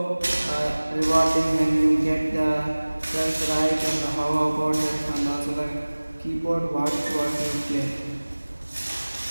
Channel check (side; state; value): both; inverted; correlation -1.00